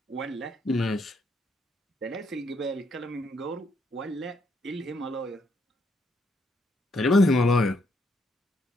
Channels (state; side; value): normal; both; correlation 0.74